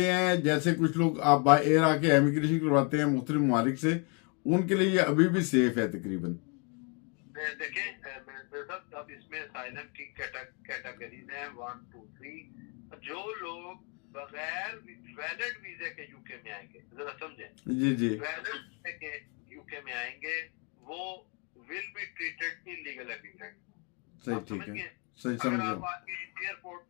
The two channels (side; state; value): right; quieter; 35.3 dB